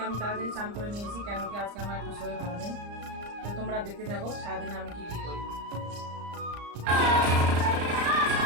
আমি তাড়াতাড়ি চান করে নিয়েছি, কেন কি আজকে আমার একটু শরীর ভালো নেই। তো তোমরা দেখতে থাকো সারাদিনে আমি কি কি করি।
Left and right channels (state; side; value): late; left; 34 ms